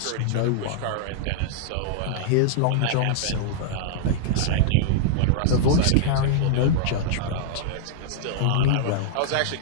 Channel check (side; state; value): both; different; correlation -0.02